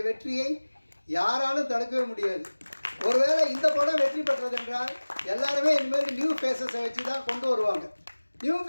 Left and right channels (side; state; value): both; inverted; correlation -1.00